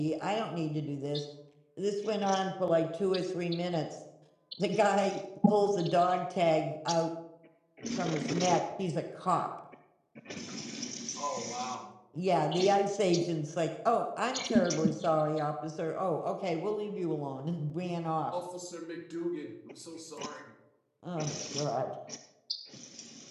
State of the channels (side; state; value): both; identical; correlation 1.00